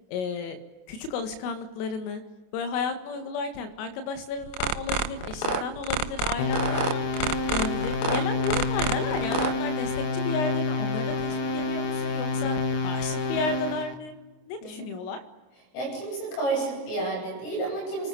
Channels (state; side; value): late; right; 28 ms